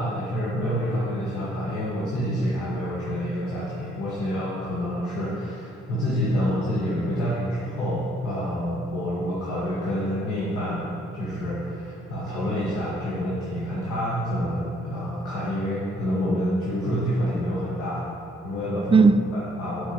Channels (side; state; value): both; normal; correlation 0.67